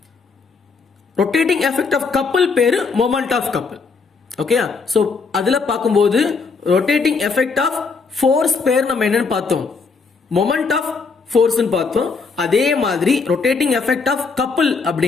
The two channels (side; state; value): right; quieter; 4.7 dB